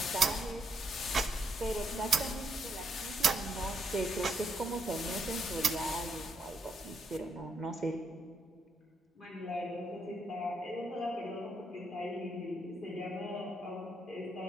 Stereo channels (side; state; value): both; normal; correlation 0.77